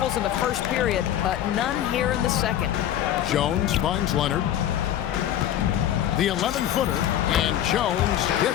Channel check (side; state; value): right; quieter; 11.5 dB